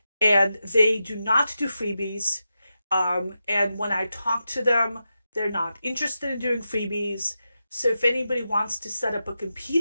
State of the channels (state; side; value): inverted; both; correlation -0.89